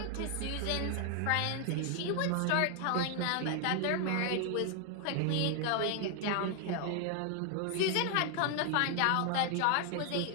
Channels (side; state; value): both; different; correlation 0.00